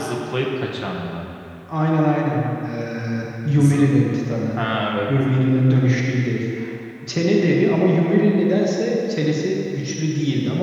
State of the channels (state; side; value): identical; both; correlation 1.00